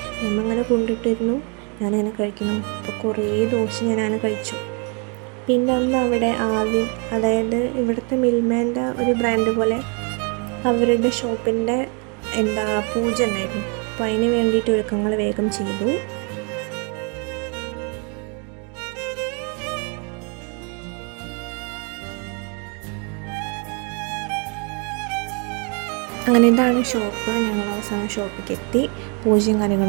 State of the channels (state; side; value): quieter; left; 35.7 dB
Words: മേമ്മ അങ്ങനെ കൊണ്ടിട്ടിരുന്നു. ഞാനങ്ങനെ കഴിക്കുന്നു. അപ്പോൾ കുറേ ദോശ ഞാനങ്ങനെ കഴിച്ചു. പിന്നെ അന്ന് അവിടെ ആവിൻ, അതായത് ഇവിടുത്തെ മിൽമേൻ്റെ ഒരു ബ്രാൻഡ് പോലെ അവരുടെ ഷോപ്പിൻ്റെ പൂജ ഉണ്ടായിരുന്നു. അപ്പോൾ അതിന് വേണ്ടിയിട്ട് ഒരുക്കങ്ങൾ വേഗം ചെയ്തു. അങ്ങനെ ഇതാണ് ഷോപ്പ്. ഞങ്ങൾ അവസാനം ഷോപ്പിലേക്ക് എത്തി. പൂജയും